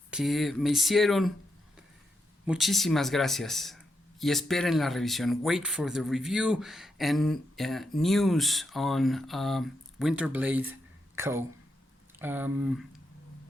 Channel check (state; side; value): normal; both; correlation 0.83